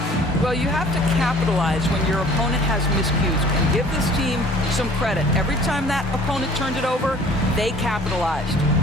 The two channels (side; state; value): both; normal; correlation 0.51